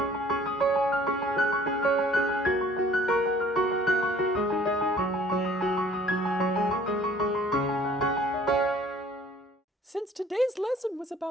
Since today's lesson was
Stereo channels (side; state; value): both; normal; correlation 0.54